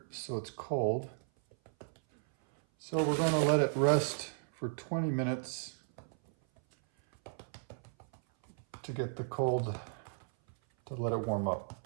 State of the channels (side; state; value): left; silent; 54 dB below the other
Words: so it's cold. So we're going to let it rest for 20 minutes to get the cold, to let it warm up.